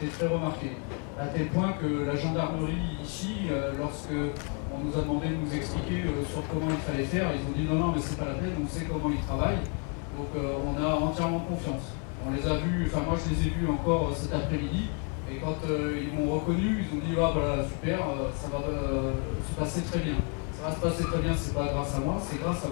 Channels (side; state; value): right; quieter; 38.8 dB